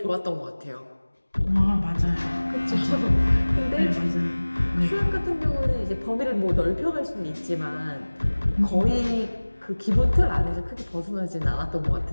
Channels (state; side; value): inverted; both; correlation -1.00